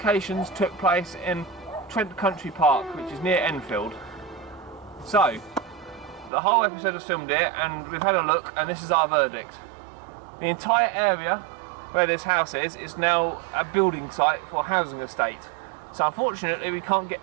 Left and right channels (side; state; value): left; drops out; at 6.3 s